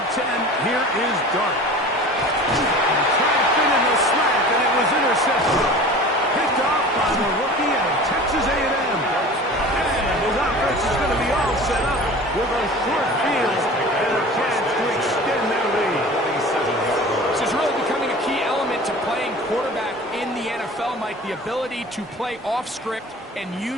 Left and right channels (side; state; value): both; normal; correlation 0.39